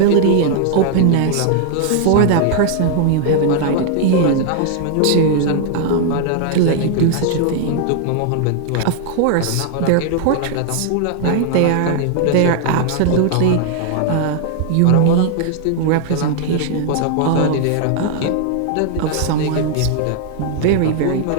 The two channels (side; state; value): both; different; correlation 0.00